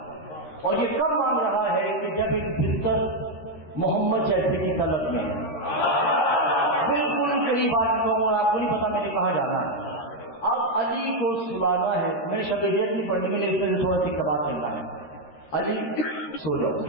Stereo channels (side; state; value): right; late; 13 ms